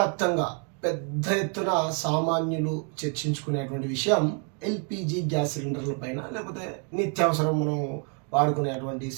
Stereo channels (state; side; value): quieter; left; 39.7 dB